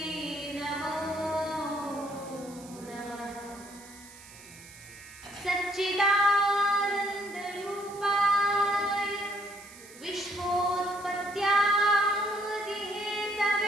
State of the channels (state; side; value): noise; right; hiss, 19 dB below the sound